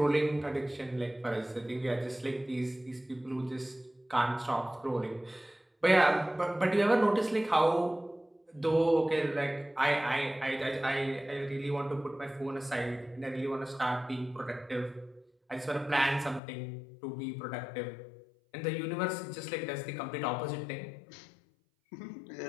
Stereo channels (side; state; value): right; drops out; at 16.4 s